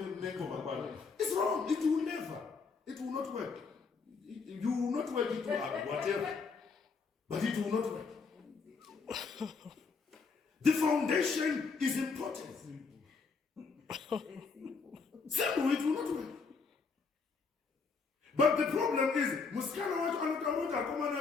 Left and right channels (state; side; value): quieter; right; 4.9 dB